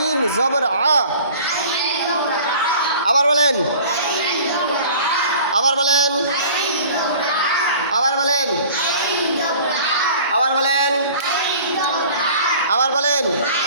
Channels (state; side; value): inverted; both; correlation -0.46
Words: জবর আবার বলেন আবার বলেন আবার বলেন আবার বলেন আবার বলেন